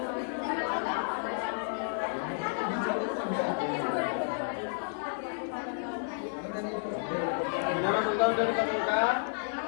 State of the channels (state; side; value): silent; right; digital silence